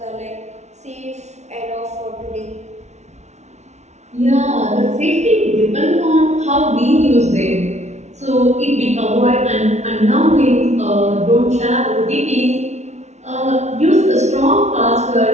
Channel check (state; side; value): late; left; 0.32 ms